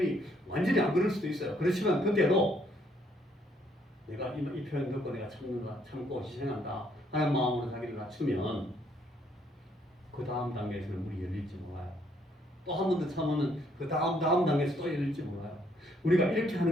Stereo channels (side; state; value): both; normal; correlation 0.69